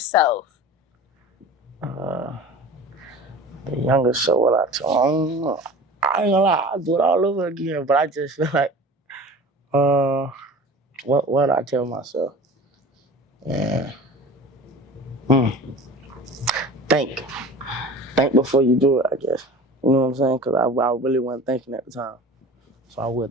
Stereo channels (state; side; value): normal; both; correlation 0.39